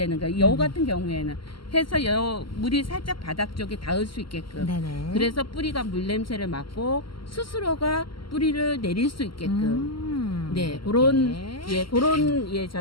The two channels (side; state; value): right; late; 0.74 ms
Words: 거예요. 요 같은 경우에는 해서 요 물이 살짝 바닥 쪽에 닿을 수 있게끔. 네네. 그래서 뿌리가 물 냄새를 맡고 스스로가 뿌리를 내릴 수 있게끔. 네, 그런